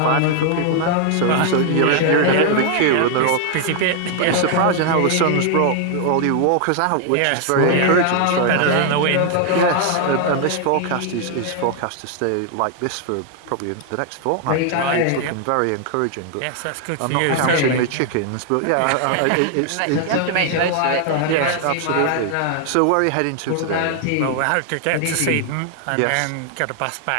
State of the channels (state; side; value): different; both; correlation 0.00